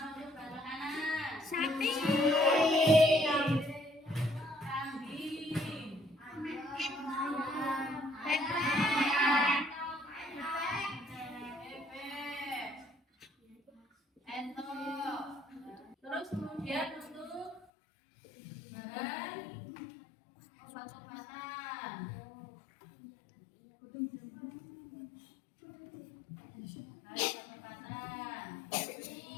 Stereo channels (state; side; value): drops out; right; at 17.7 s